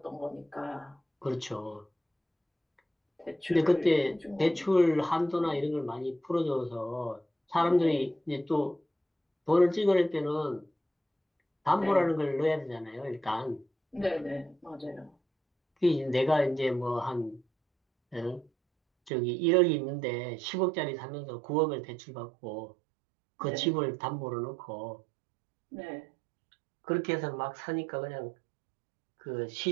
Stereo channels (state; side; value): drops out; left; at 19.1 s